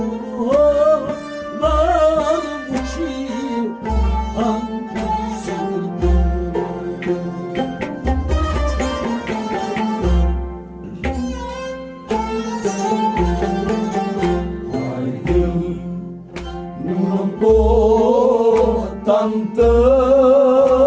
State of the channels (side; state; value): both; identical; correlation 1.00